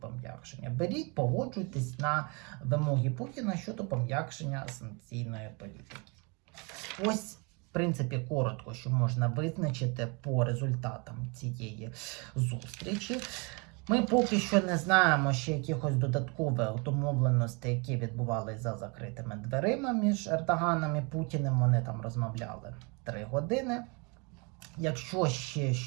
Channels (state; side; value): quieter; left; 31.3 dB